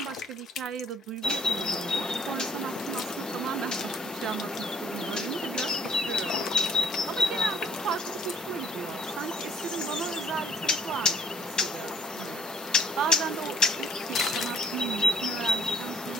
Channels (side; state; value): both; normal; correlation 0.58